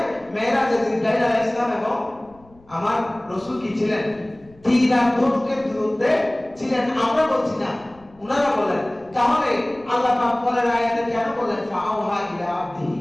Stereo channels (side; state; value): left; noise; rumble, 28 dB below the sound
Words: মেরাজে জিবরাইল আলাইহিস সালাম এবং আমার রাসূল কি ছিলেন, তীর আর ধনুকের দূরত্বে ছিলেন। আমরা বলছি না, ওনারা বলেন। তাহলে আল্লাহ পাক পরের আয়াতে কেন বলেন ফাআওহা ইলা